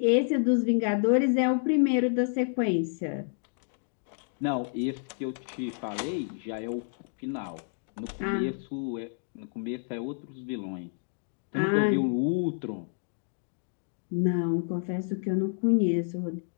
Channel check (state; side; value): silent; right; 58 dB below the other